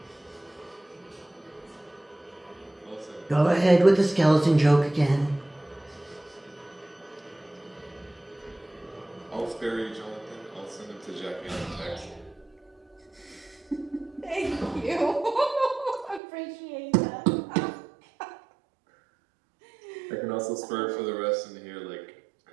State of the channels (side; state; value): left; drops out; at 16.2 s